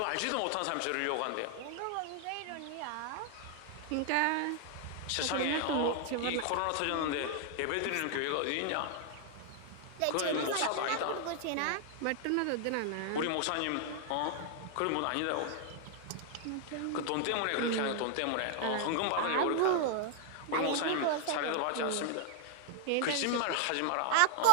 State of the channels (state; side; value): different; both; correlation 0.00